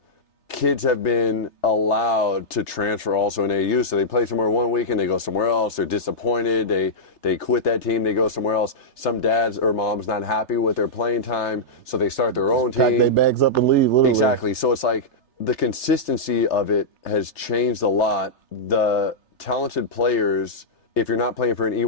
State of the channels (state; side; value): late; right; 3.3 ms